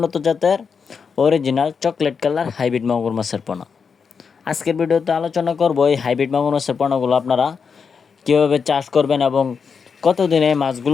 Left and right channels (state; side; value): quieter; right; 5.9 dB